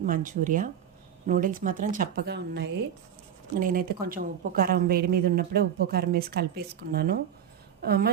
Manchuria. నూడిల్స్ మాత్రం చప్పగా ఉన్నాయి. నేనైతే కొంచెం ఉప్పు, కారం వేడి మీద ఉన్నప్పుడే ఉప్పు, కారం వేసి కలిపేసుకున్నాను.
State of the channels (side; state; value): left; quieter; 9.2 dB